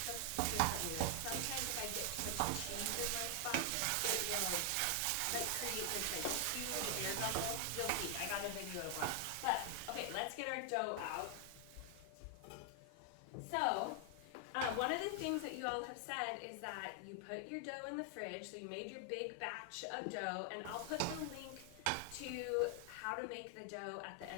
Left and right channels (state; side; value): different; both; correlation 0.00